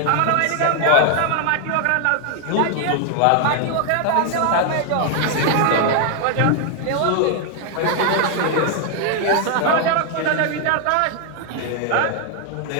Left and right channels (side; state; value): both; different; correlation 0.00